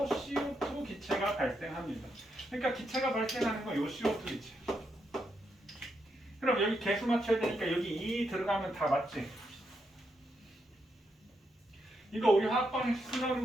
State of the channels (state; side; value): normal; both; correlation 0.81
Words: CO2 기체가 발생합니다. 그러니까 기체가 발생하는 건 요 CO2 기체. 그럼 여기 개수 맞춰야 되니까 여기 2 들어가면 다 맞지? 이거 우리 화학방식 쓰는